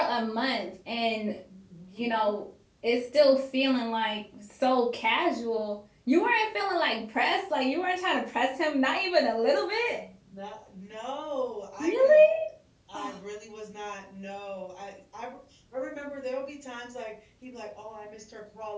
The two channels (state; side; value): identical; both; correlation 1.00